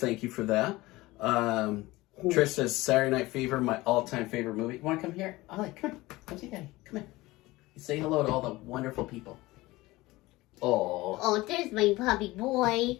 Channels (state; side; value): quieter; right; 19.7 dB